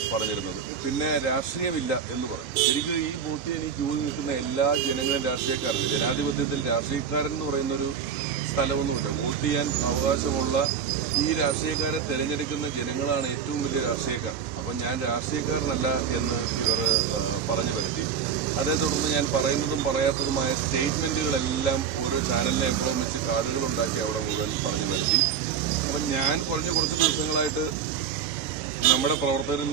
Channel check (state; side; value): quieter; left; 7.2 dB